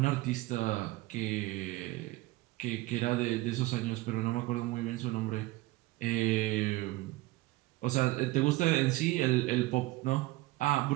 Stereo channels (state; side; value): quieter; left; 19.1 dB